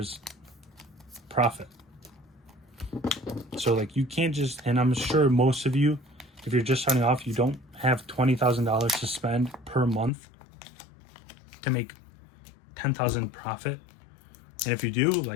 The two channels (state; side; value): drops out; right; at 10.1 s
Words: profit. So like, you can't just, and I'm sure most of you, if you're just starting off, you don't have $20,000 to spend per month to make 10,000 profit. And if you do,